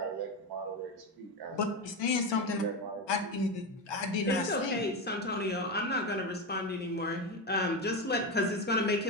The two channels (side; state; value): both; normal; correlation 0.16